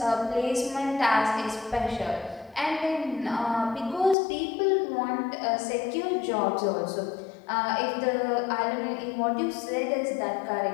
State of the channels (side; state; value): right; drops out; at 4.2 s